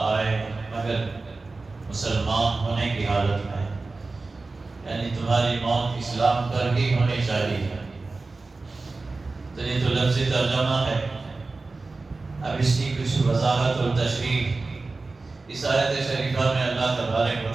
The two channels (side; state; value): left; quieter; 3.6 dB